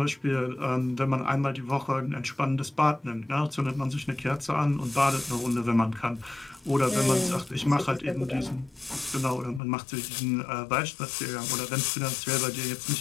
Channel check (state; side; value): drops out; right; at 9.6 s